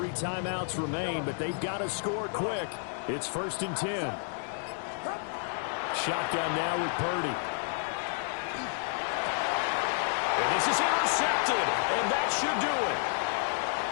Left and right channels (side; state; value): right; silent; 57 dB below the other